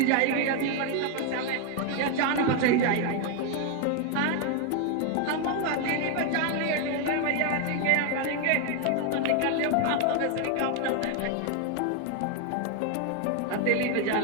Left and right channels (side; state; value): both; different; correlation 0.01